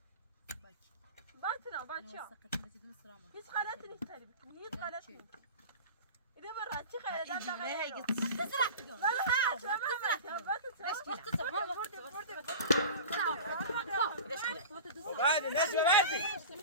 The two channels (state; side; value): inverted; both; correlation -0.33